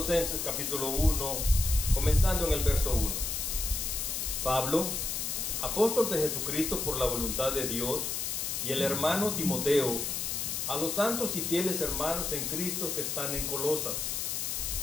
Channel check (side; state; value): left; noise; hiss, 2 dB below the sound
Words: capítulo 1, comenzando en el verso 1. Pablo, apóstol de Jesucristo por la voluntad de Dios, y el hermano Timoteo, a los santos y fieles hermanos en Cristo que están en Colosas.